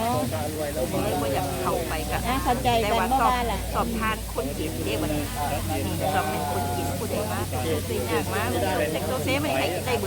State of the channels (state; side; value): identical; both; correlation 1.00